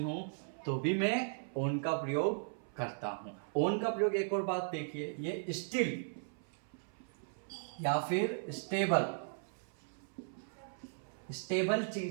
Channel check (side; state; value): left; silent; 53 dB below the other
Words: हो तो भी मैं ऑन का प्रयोग करता हूं। ऑन का प्रयोग एक और बात देखिए, ये स्टिल या फिर स्टेबल